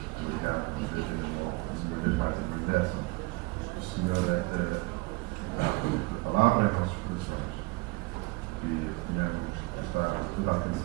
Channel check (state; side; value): quieter; left; 24.7 dB